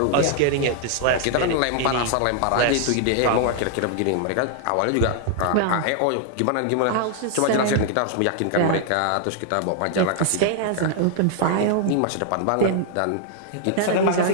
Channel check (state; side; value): different; both; correlation 0.00